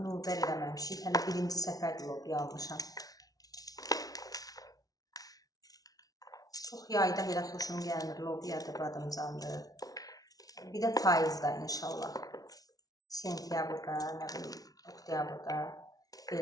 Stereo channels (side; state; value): right; late; 0.18 ms